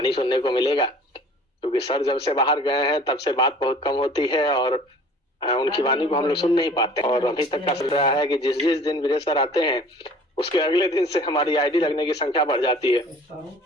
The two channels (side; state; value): both; normal; correlation 0.48